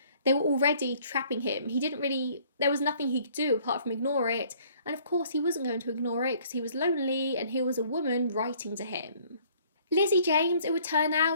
they were already trapping him. There was nothing he could do apart from ignore it. And of course he wasn't going to ignore it because he was lonely and here was a woman writing to him. Lizzie James, it would turn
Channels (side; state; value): both; inverted; correlation -0.59